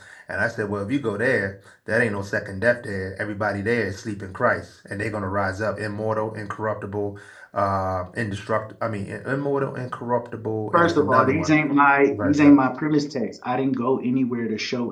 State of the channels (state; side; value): identical; both; correlation 1.00